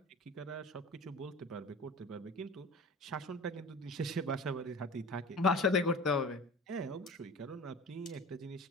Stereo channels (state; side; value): normal; both; correlation 0.38